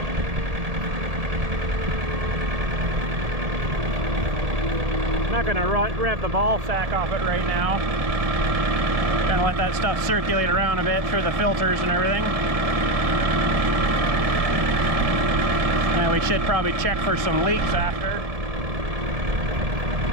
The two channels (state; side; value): late; left; 1.7 ms